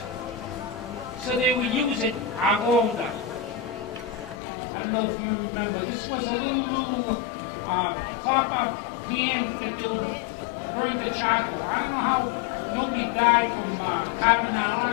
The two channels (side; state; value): right; drops out; at 4.4 s